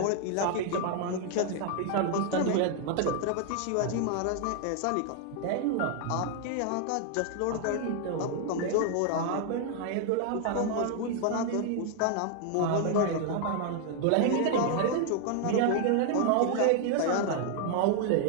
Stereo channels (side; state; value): both; different; correlation 0.00